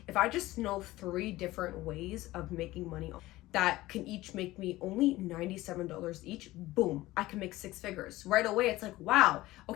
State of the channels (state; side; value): quieter; right; 17.7 dB